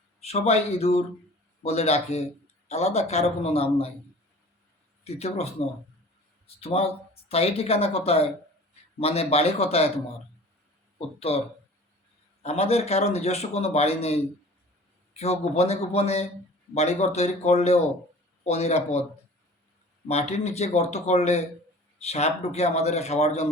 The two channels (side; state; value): both; normal; correlation 0.44